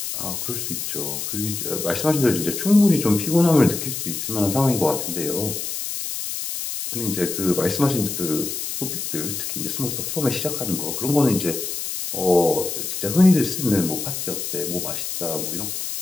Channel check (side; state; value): left; noise; hiss, 4 dB below the sound